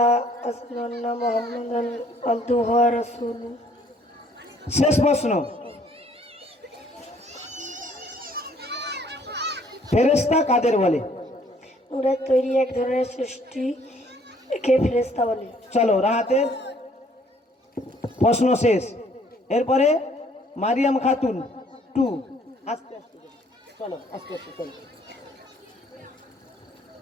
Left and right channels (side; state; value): both; normal; correlation 0.61